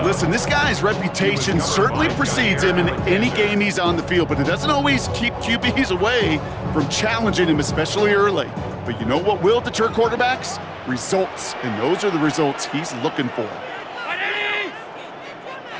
Listen, this guy's reputation certainly precedes him in any game he's on the field, but it doesn't always keep QBs away from challenging him, especially early. But you know what will deter quarterbacks? Results, and those are the results he's looking for.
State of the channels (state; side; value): identical; both; correlation 1.00